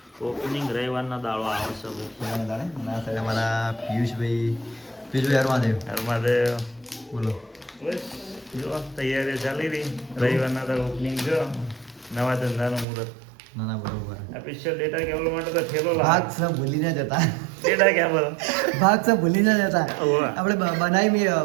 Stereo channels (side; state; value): left; drops out; at 12.9 s